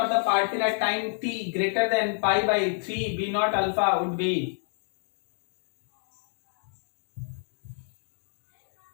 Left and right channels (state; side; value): silent; right; digital silence